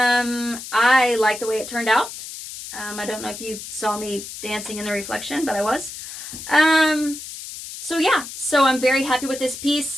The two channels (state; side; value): noise; left; hiss, 11 dB below the sound